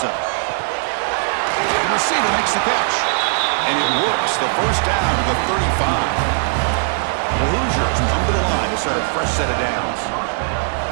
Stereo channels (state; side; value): silent; left; 62 dB below the other